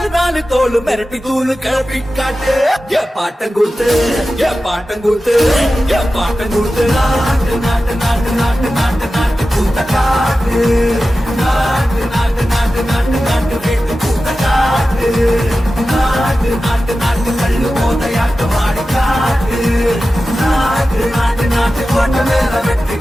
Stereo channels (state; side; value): normal; both; correlation 0.94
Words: நாலு தோளு மிரட்டி தூளு கிளப்பி காட்டு ஏ பாட்டம் கூத்து ஏ பாட்டம் கூத்து ஏ பாட்டம் கூத்து நாட்டு நாட்டு நாட்டு நாட்டு நாட்டு நாட்டு கூத்த காட்டு நாட்டு நாட்டு நாட்டு நாட்டு நாட்டு வீட்டு கூத்த காட்டு நாட்டு நாட்டு நாட்டு கள்ளு போதையாட்டு மாடி காட்டு நாட்டு நாட்டு நாட்டு கொண்ட மேல வெற்றி